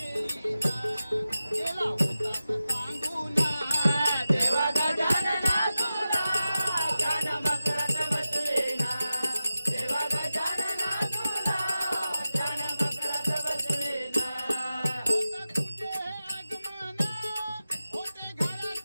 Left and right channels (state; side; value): inverted; both; correlation -0.94